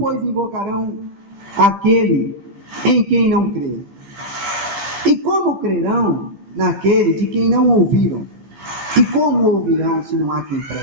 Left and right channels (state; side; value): late; left; 15 ms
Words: invocarão aquele em quem não crê? E como crerão naquele de quem não ouviram? E como ouvirão se não há quem